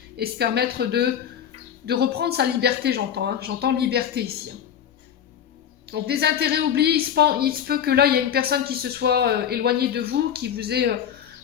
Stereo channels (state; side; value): quieter; right; 9.1 dB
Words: et se permettre de reprendre sa liberté, j'entends. Hein. J'entends liberté ici. Hein. Donc des intérêts oubliés, il se peut que là, il y a une personne qui se soit éloignée de vous, qui vous ait